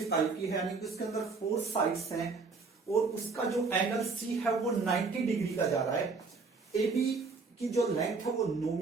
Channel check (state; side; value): quieter; left; 4.3 dB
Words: टाइप की है, यानी कि उसके अंदर 4 साइड्स हैं और उसका जो एंगल C है वो 90 डिग्री का जा रहा है। AB की जो लेंथ है वो 9